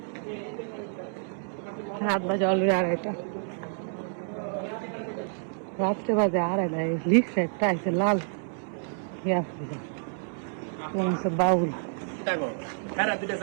রাত বাজে অলরেডি 2:30 রাত্রে বাজে 2:30 লিখছে একটা আছে লাল বাউল দেখো হ্যাঁ দুটো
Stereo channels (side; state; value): left; silent; digital silence